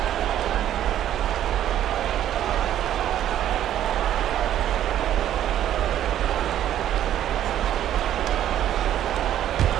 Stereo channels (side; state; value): left; quieter; 11.4 dB